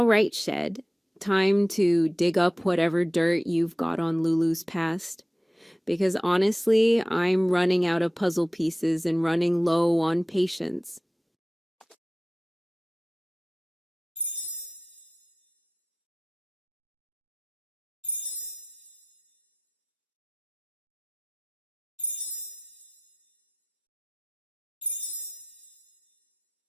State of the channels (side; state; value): both; normal; correlation 0.95